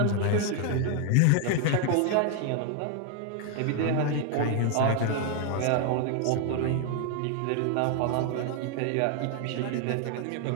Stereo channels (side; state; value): both; different; correlation 0.01